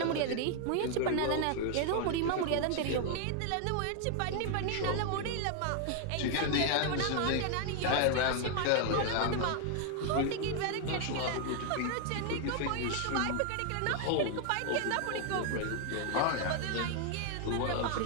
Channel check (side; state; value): both; different; correlation 0.00